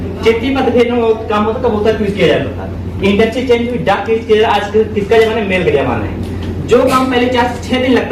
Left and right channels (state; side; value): identical; both; correlation 1.00